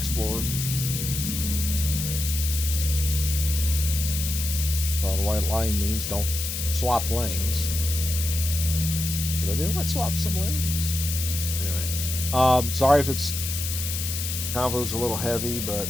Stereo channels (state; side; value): noise; left; hiss, 4 dB below the sound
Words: Well, the white line means don't swap lanes. What do I do? Let's swap some lanes. Anyway, sorry if it's convo's a little heavy, but